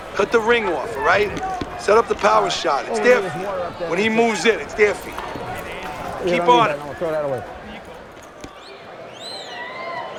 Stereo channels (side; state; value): both; identical; correlation 1.00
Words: Cut the ring off, all right? Set up the power shot. It's their feet. When he moves in, it's their feet. Keep on it. I'll throw that away.